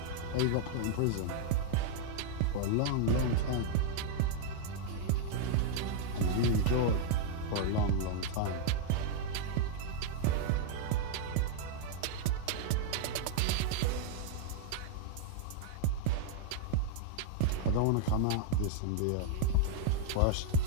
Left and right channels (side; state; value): both; different; correlation -0.01